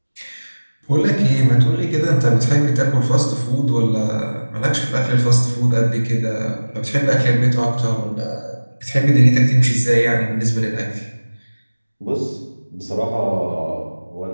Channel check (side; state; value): both; inverted; correlation -1.00